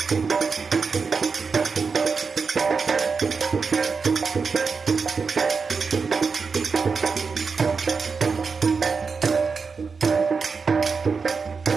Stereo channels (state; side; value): quieter; left; 5.1 dB